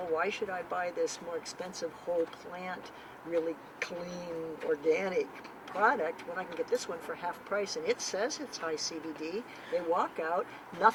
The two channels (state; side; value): identical; both; correlation 1.00